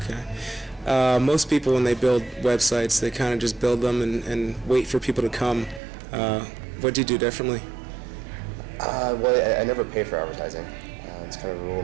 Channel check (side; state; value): left; drops out; at 5.8 s